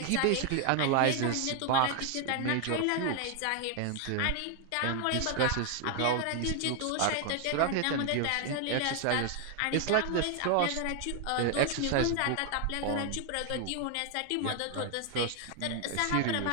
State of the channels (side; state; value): both; different; correlation 0.00